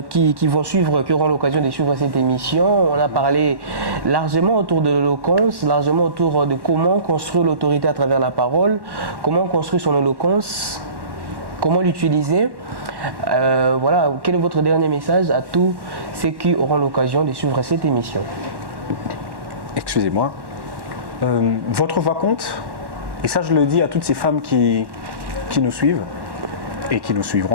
suivre, qui auront l'occasion de suivre cette émission. On a parlé largement autour de l'éloquence, largement autour de comment construire l'autorité à travers la parole, comment construire son éloquence, comment l'utiliser. Voilà, quel est votre dernier message à tous ceux qui auront l'occasion de suivre cette émission? Excusez-moi. Votre voix compte, et ça je le dis à toutes ces femmes qui nous suivent et qui nous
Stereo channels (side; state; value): left; late; 1.1 ms